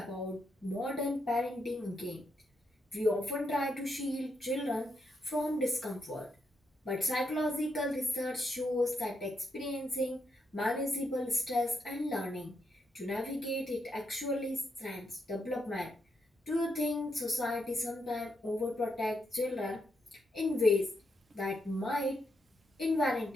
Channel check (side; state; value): both; normal; correlation 0.81